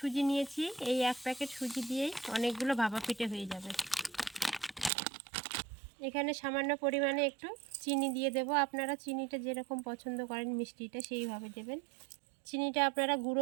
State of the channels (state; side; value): drops out; left; at 4.9 s